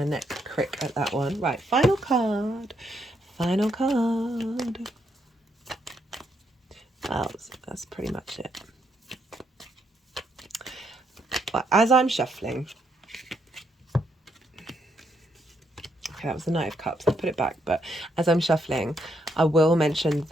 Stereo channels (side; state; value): both; normal; correlation 0.76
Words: neck crick at that one. Right, final card. Final card. Well, that's pretty much it. But as I'm shuffling, okay, that was the Knight of Cups. I'll put it back. But as I'm shuffling, I will mention